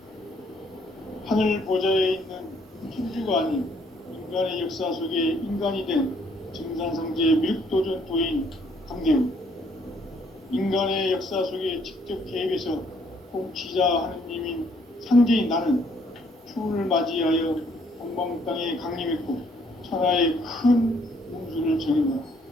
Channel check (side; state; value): both; normal; correlation 0.66